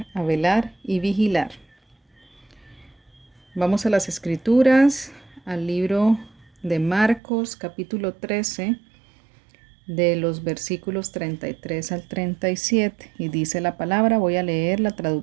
a velar y vigilar. Vamos a las Escrituras, al libro de Marcos, capítulo 13, de los versículos 33 al 37. Y dice la palabra, voy a leer la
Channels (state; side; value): drops out; left; at 7.2 s